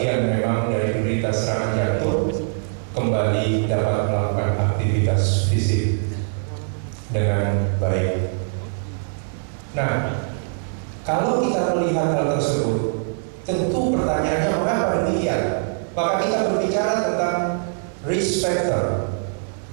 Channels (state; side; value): silent; left; digital silence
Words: memang dari penderita serangan jantung kembali dapat melakukan aktivitas fisik dengan baik. Nah, kalau kita melihat hal tersebut, tentu pertanyaannya mengapa demikian? Maka kita berbicara tentang risk factor.